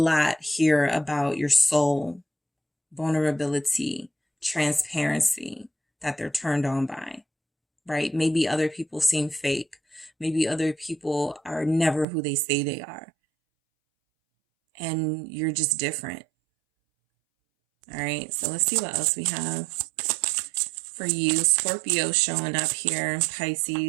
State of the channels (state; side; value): drops out; left; at 12.1 s